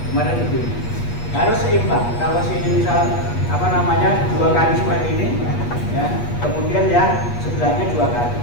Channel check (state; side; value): late; right; 8.4 ms